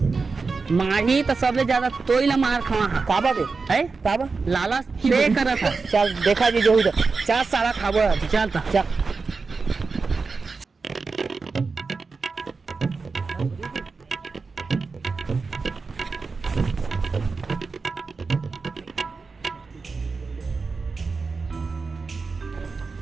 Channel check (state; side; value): quieter; left; 4.4 dB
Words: माही तो सबसे ज्यादा तोई ला मार खावा काबा बे है काबा लाला पे करा था चल देखा जी जो उधर 4 साला खाबो चलता चल